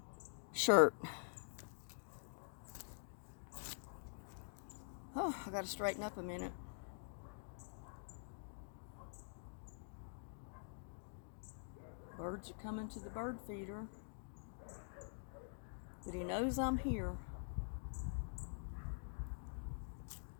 shirt. Oh, I gotta straighten up a minute. Birds are coming to the bird feeder. But he knows I'm here.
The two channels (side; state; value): right; silent; digital silence